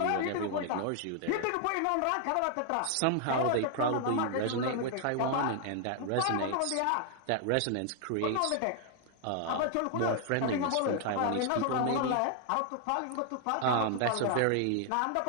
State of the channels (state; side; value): different; both; correlation 0.00